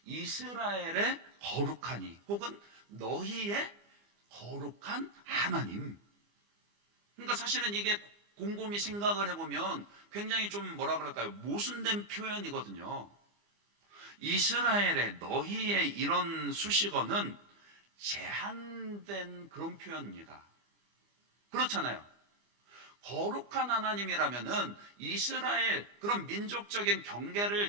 이스라엘의 거룩하니, 혹은 너희의 거룩한 하나님. 그러니까 사실은 이게 곰곰이 생각을 해보면 굉장히 좀 뭐라 그럴까요? 모순된 표현이거든요. 이스라엘의, 너희의 이런 수식어는 제한된 그런 표현입니다. 그렇잖아요. 거룩한 하나님이라면은 이스라엘 그런 민족적인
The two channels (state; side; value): late; left; 25 ms